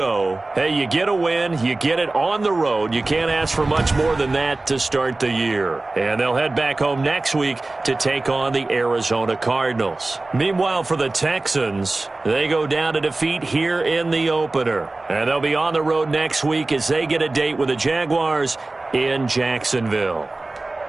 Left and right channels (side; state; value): left; quieter; 3.1 dB